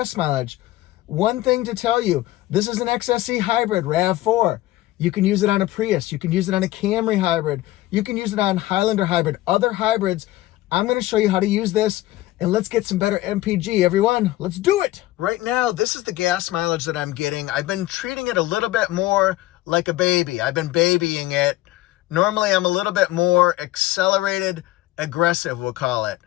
mileage. One thing to tell you, this is an XSE Hybrid RAV4. You can use it on a Prius. You can use it on a Camry Hybrid. You can use it on Highlander Hybrid, other hybrids. I'm going to show you how to use this, and let's get some better MPG, everyone. Let's do it. Right now, this is the gas mileage that I'm getting. I've been treating it a little bit more like a baby. I've been babying it. Normally, I'm a little bit more accelerated, aggressive, we'll call it,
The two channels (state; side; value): quieter; right; 16.6 dB